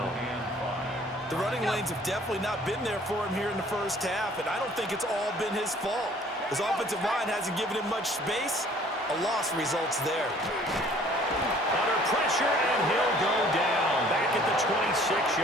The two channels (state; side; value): normal; both; correlation 0.55